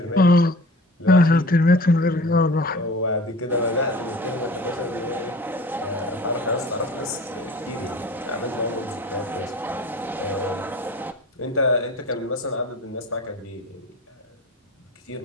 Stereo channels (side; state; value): both; normal; correlation 0.41